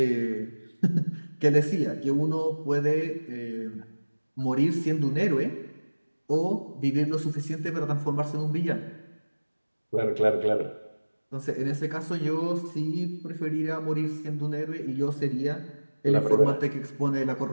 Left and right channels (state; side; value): inverted; both; correlation -1.00